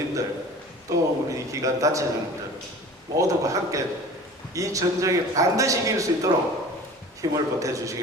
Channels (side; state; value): both; normal; correlation 0.41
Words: 또 우리 기관 단체장님들 모두가 함께 이 전쟁에 반드시 이길 수 있도록 힘을